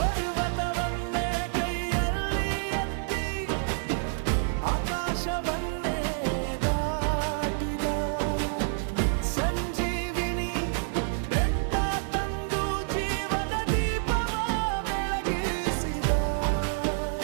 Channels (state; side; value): silent; left; 59 dB below the other